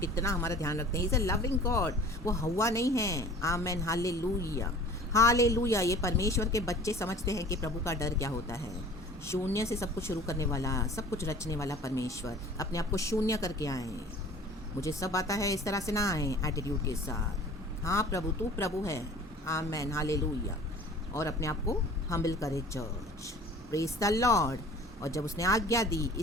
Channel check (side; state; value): both; normal; correlation 0.45